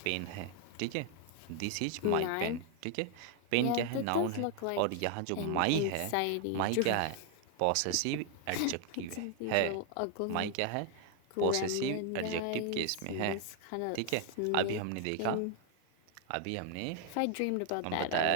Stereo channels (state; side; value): different; both; correlation 0.00